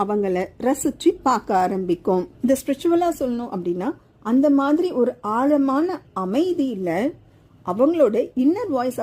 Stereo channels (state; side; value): identical; both; correlation 1.00